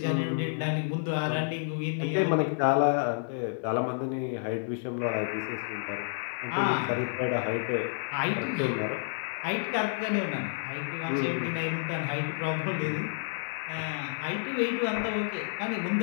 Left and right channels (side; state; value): right; silent; 58 dB below the other